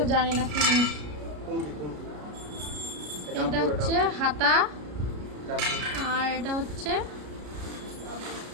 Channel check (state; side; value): late; left; 33 ms